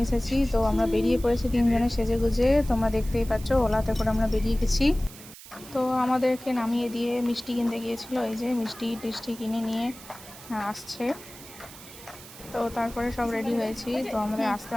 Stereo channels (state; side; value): noise; right; hiss, 17 dB below the sound